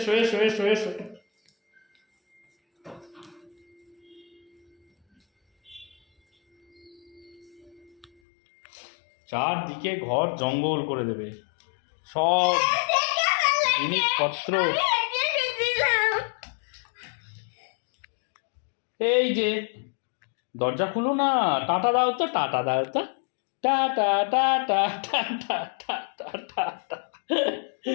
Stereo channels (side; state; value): right; drops out; at 8.1 s